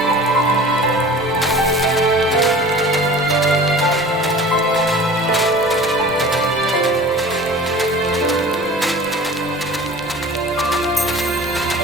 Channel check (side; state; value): both; normal; correlation 0.41